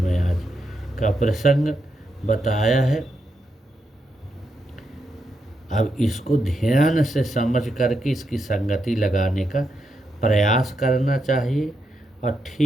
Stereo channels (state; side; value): normal; both; correlation 0.82